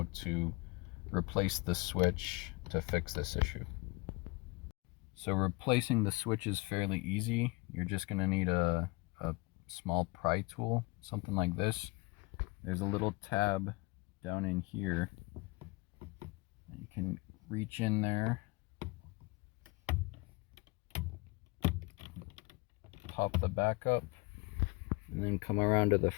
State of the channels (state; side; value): quieter; right; 26.1 dB